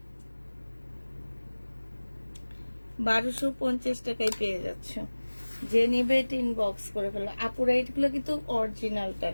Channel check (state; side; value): inverted; both; correlation -1.00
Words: 1250 টাকায় পেয়ে যাচ্ছ। যে নিবে এটা ইনবক্স করে ফেলো। আপুরা এগুলো কিন্তু অরিজিনালটা